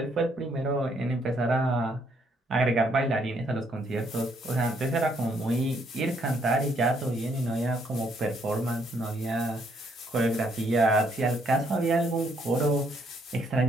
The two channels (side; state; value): both; normal; correlation 0.70